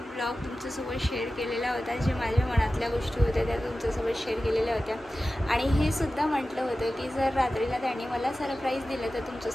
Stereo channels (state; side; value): normal; both; correlation 0.95